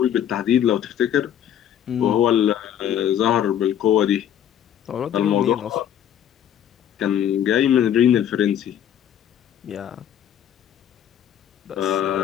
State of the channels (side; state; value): right; quieter; 10.1 dB